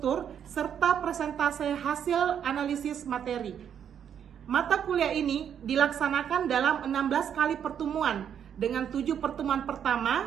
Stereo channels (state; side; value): quieter; left; 8.7 dB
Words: serta presentasi hasil analisis materi. Mata kuliah ini dilaksanakan dalam 16 kali pertemuan dengan 7 pertemuan